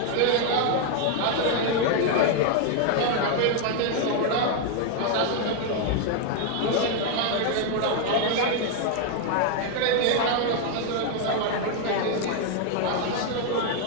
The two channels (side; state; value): both; different; correlation 0.00